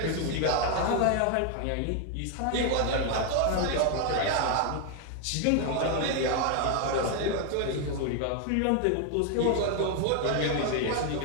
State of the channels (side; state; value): both; different; correlation 0.01